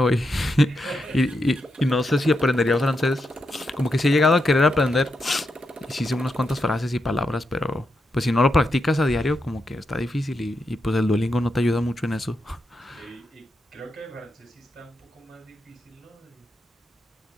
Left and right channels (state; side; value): normal; both; correlation 0.85